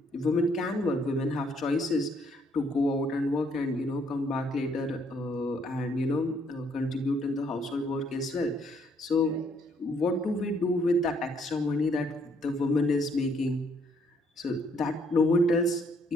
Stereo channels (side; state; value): both; normal; correlation 0.68